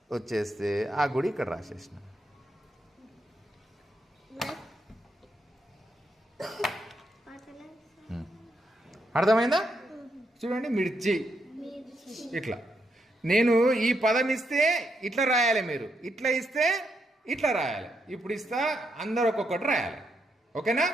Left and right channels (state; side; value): normal; both; correlation 0.80